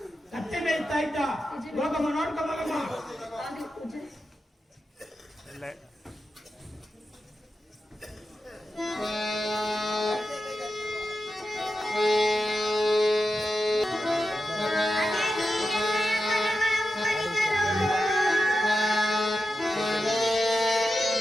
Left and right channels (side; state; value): both; normal; correlation 0.90